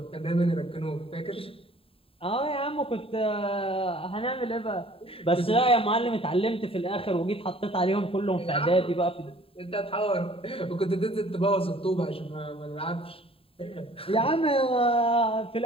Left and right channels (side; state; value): right; late; 0.27 ms